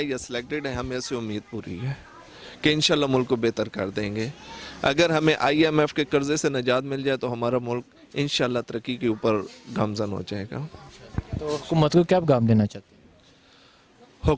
یا سلیکٹڈ ہے، ہمیں سے امید پوری ہے کہ انشاءاللہ ملک کو بہتر کر دیں گے۔ اگر ہمیں آئی ایم ایف کے قرضے سے نجات مل جائے تو ہمارا ملک انشاءاللہ ترقی کے اوپر گامزن ہو جائے گا۔ تو حکومت کو کیا پیغام دینا چاہتے ہیں؟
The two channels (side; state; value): both; identical; correlation 1.00